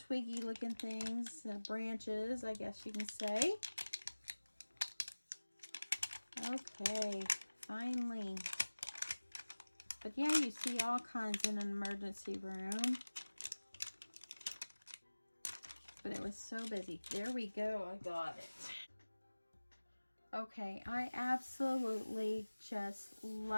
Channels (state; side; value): inverted; both; correlation -1.00